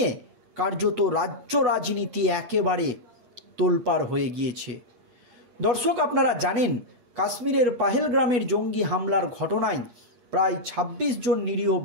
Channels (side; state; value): left; late; 8.2 ms